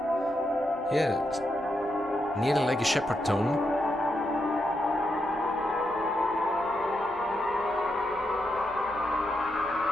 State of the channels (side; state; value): right; noise; rumble, 24 dB below the sound